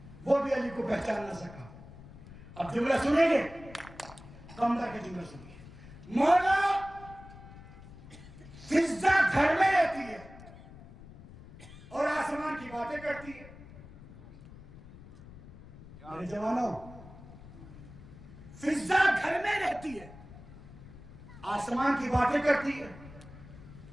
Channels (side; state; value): left; noise; rumble, 17 dB below the sound